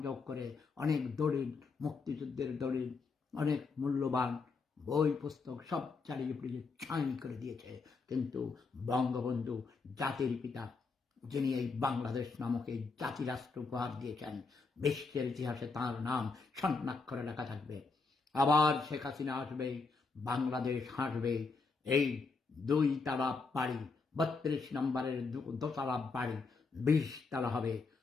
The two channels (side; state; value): right; quieter; 4.4 dB